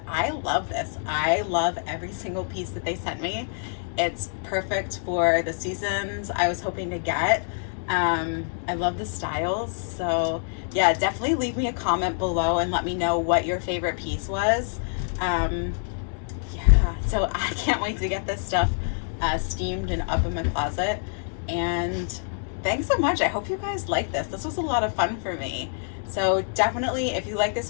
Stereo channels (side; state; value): right; silent; digital silence